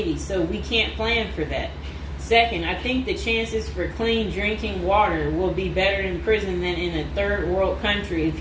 so we can't plan for that. Second, I think the chances for clean drinking water will be better in prison than in a third world country if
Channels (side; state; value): both; identical; correlation 1.00